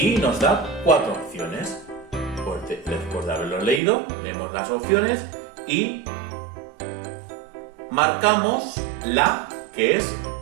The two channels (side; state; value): left; drops out; at 3.8 s